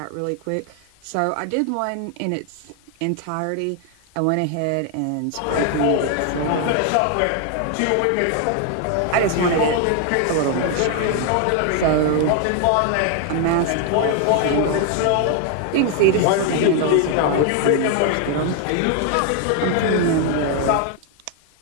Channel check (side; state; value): both; different; correlation 0.00